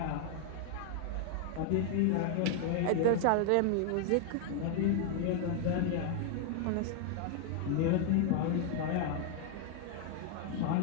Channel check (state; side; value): different; both; correlation 0.00